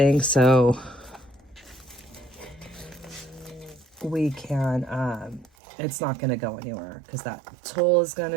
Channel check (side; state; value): left; drops out; at 5.5 s